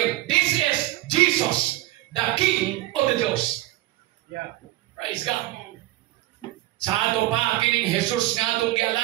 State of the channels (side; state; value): left; quieter; 16.7 dB